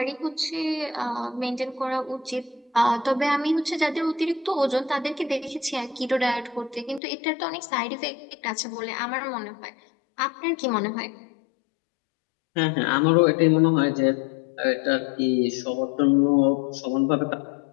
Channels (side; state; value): right; drops out; at 7.0 s